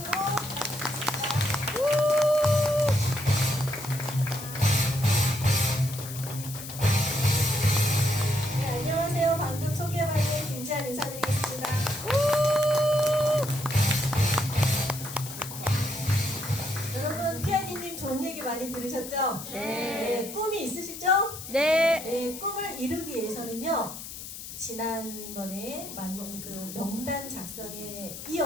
네, 안녕하세요. 방금 소개받은 김지한 인사드리겠습니다. 여러분, 피아니님 좋은 얘기 많이 들으셨죠? 네. 꿈이 있으시죠? 네. 꿈을 이루기 위해서는요, 지난번에 그 명단 작성에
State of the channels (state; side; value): noise; left; hiss, 11 dB below the sound